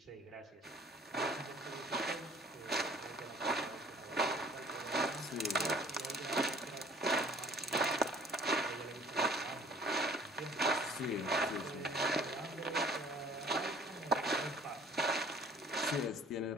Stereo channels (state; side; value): normal; both; correlation 0.54